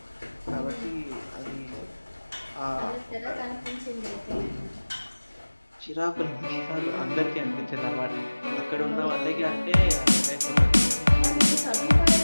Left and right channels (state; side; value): inverted; both; correlation -1.00